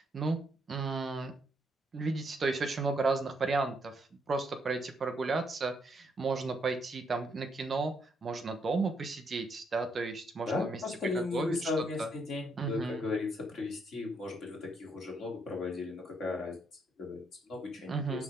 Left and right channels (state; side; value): normal; both; correlation 0.74